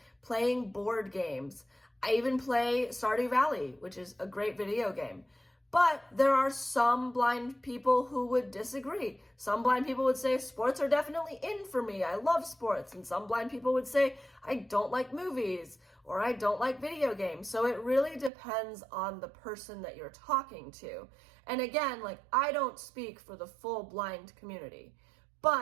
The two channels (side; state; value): left; drops out; at 18.3 s